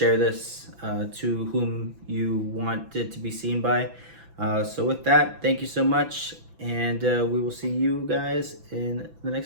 this to whom you want it to be seen by. So with that, thank you so much, and we will see you guys in the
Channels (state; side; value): late; left; 6.0 ms